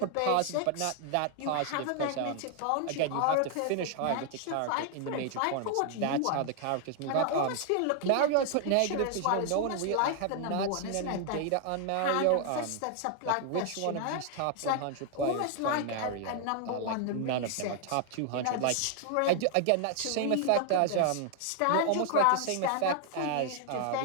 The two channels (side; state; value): both; different; correlation 0.00